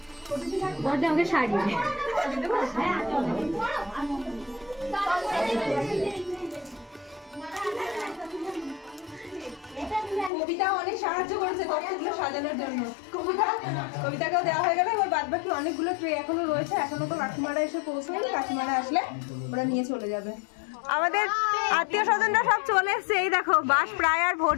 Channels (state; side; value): drops out; right; at 10.3 s